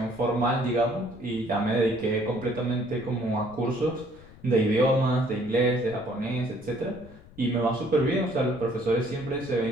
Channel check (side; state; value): left; noise; rumble, 21 dB below the sound